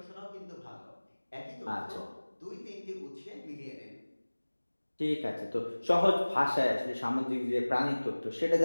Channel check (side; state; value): both; inverted; correlation -1.00